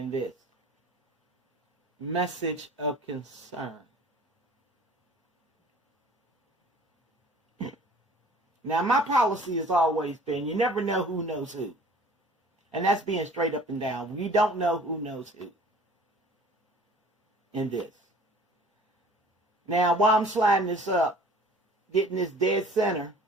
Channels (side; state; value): both; normal; correlation 0.49